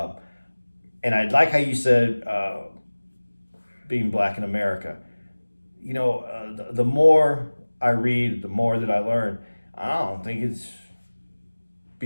I like how you said being black in America. You know, the more I read, the more that I learn. I don't think it's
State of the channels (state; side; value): inverted; both; correlation -1.00